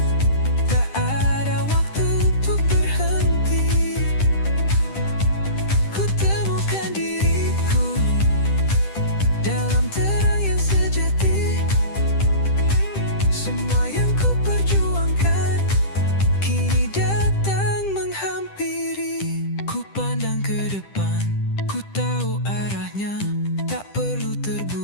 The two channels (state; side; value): late; right; 10 ms